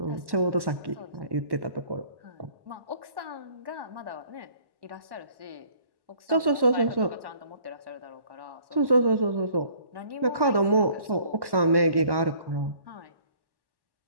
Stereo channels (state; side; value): late; left; 1.1 ms